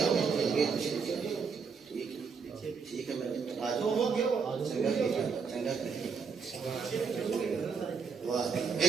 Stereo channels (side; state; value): left; quieter; 5.6 dB